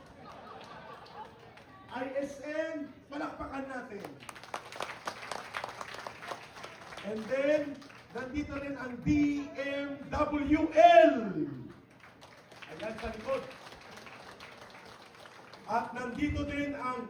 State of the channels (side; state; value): both; identical; correlation 1.00